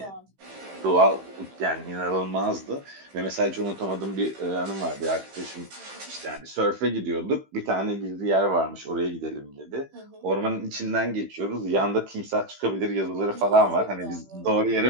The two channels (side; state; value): left; late; 15 ms